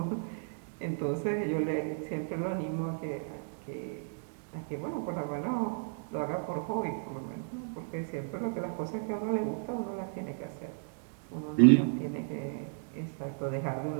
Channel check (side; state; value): left; silent; digital silence